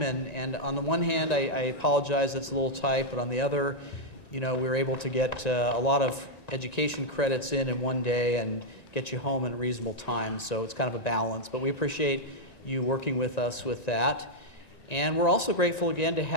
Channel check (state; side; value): late; right; 1.9 ms